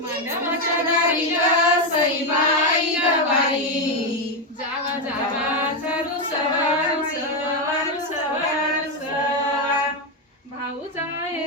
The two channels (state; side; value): normal; both; correlation 0.07